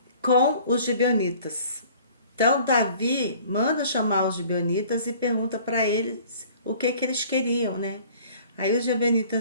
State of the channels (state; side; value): inverted; both; correlation -0.51